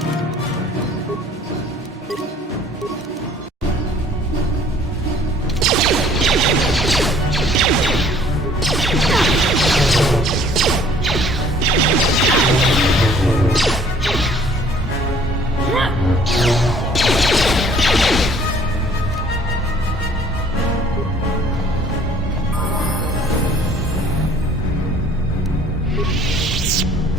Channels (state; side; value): normal; both; correlation 0.56